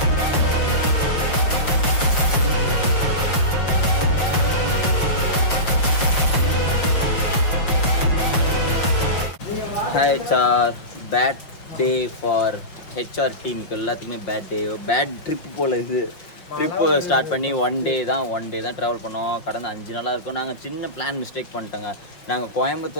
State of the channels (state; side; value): late; right; 5.7 ms